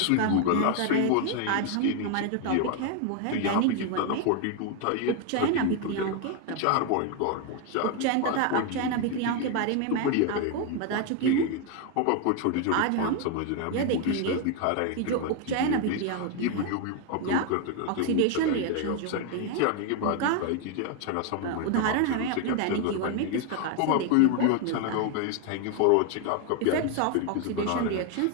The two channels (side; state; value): both; different; correlation 0.01